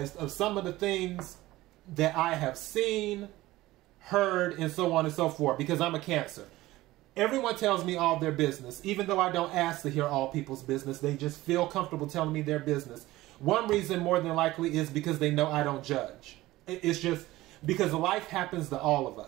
of some of the things that I have seen, heard, and so on and so forth, because I'm a Cancer. Everyone tells me all their business, even though I don't ask to hear all people's business. They just feel comfortable telling me their business. One reason more than likely is because they know I don't judge. It's just because life happens to all of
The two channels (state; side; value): quieter; left; 17.5 dB